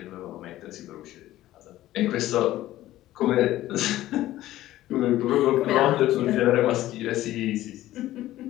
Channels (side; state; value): right; quieter; 14.9 dB